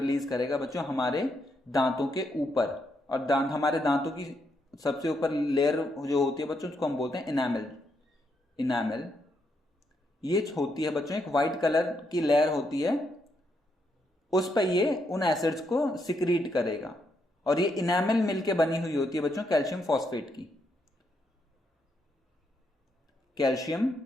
करेगा बच्चों हमारे दांतों के ऊपर। और हमारे दांतों की सबसे ऊपर लेयर जो होती है बच्चों उसको हम बोलते हैं इनामल। ये होती है बच्चों एक व्हाइट कलर की लेयर होती है, उस पर ये उन एसिड्स को सिक्रीट करेगा और ये इनामल मिलके बनी हुई होती है बच्चों कैल्शियम फॉस्फेट की। Calcium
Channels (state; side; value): normal; both; correlation 0.78